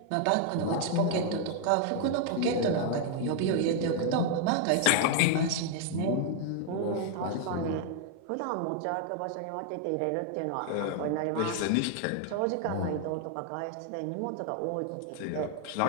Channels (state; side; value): different; both; correlation 0.00